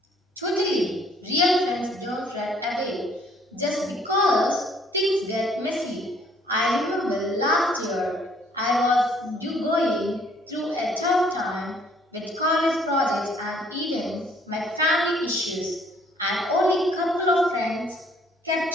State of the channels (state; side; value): normal; both; correlation 0.62